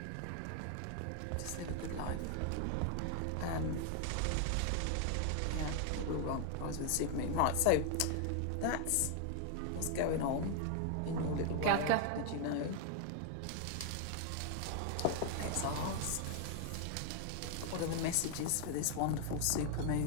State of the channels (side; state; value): both; different; correlation 0.00